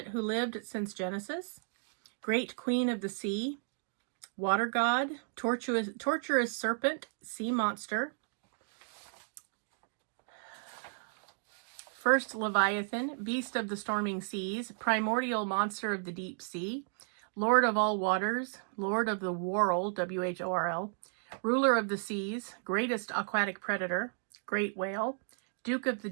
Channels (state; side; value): silent; left; digital silence